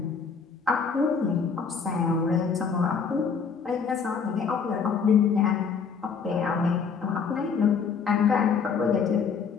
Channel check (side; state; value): right; quieter; 5.9 dB